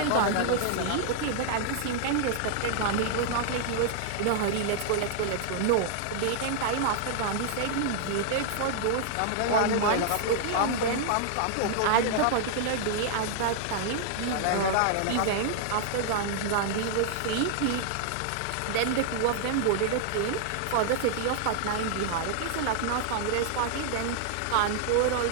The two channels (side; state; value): both; different; correlation -0.01